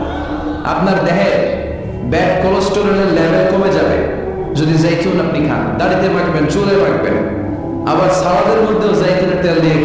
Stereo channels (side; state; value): both; identical; correlation 1.00